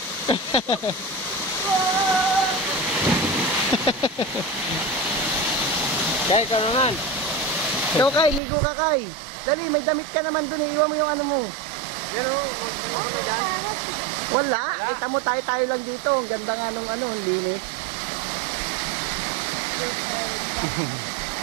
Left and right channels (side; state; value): left; drops out; at 8.4 s